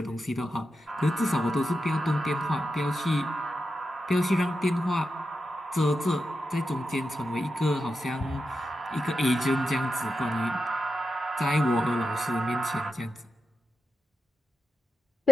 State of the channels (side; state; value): both; normal; correlation 0.89